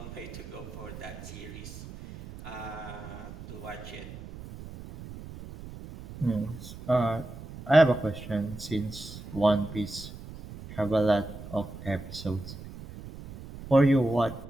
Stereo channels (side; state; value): right; noise; rumble, 13 dB below the sound